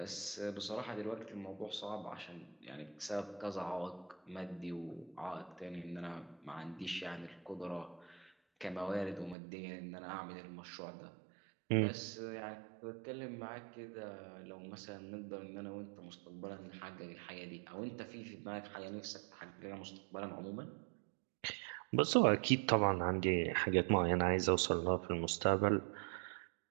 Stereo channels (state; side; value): drops out; left; at 9.3 s